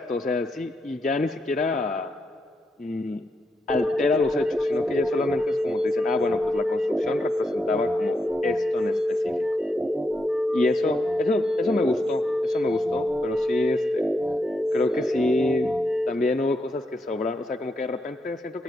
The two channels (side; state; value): both; normal; correlation 0.82